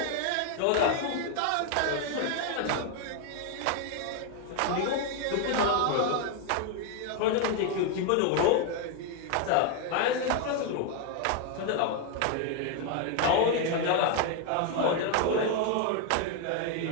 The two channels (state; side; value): different; both; correlation 0.01